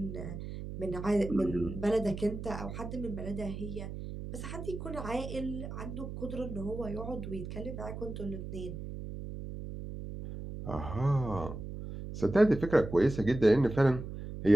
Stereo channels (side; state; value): right; noise; hum, 8 dB below the sound